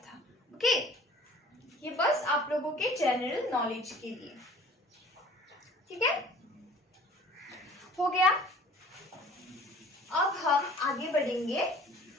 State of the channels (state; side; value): normal; both; correlation 0.48